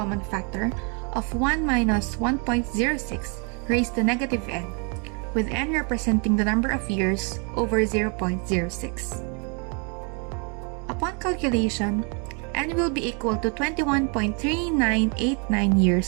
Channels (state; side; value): quieter; left; 35.6 dB